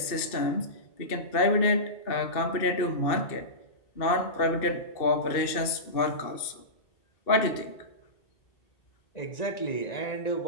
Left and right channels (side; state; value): right; late; 2.6 ms